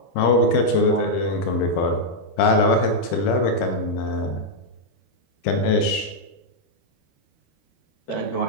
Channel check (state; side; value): late; right; 12 ms